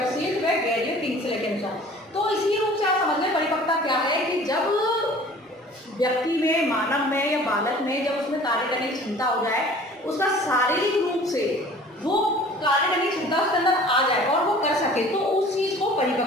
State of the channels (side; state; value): both; normal; correlation 0.47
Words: व गैरियो किंग्सले के अनुसार। तो इसी रूप से आप समझ लें परिपक्वता क्या है कि जब व्यक्ति में, मानव में या बालक में जब उसमें कार्य करने की क्षमता हो जाए, उसका शारीरिक रूप से वो कार्य करने की क्षमता उसके अंदर आ जाए और वो कर सके, तो उस चीज को